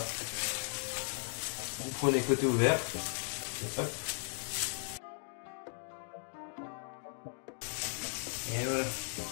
vous prenez côté ouvert et hop. Et voilà,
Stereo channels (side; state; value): right; silent; 53 dB below the other